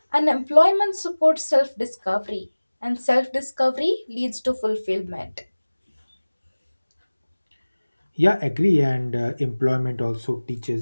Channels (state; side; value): inverted; both; correlation -1.00